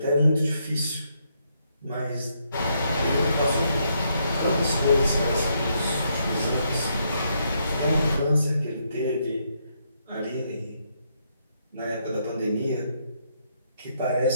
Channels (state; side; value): inverted; both; correlation -0.76